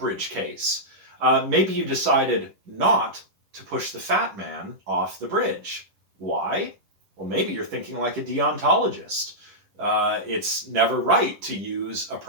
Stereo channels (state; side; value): late; left; 10 ms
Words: case. Maybe you decided not to push the fat man off the bridge. Why? Well, maybe you're thinking like a deontologist. It's never right to use a